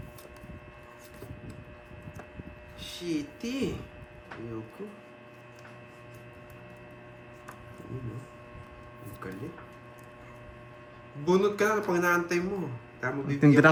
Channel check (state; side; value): identical; both; correlation 1.00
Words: Shitty. Ayoko. Ano? Ang galit. Bunot ka na pag naantay mo. Tayo mo Tindi